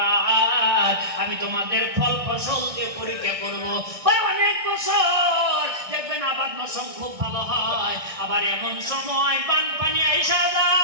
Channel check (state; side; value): late; left; 1.6 ms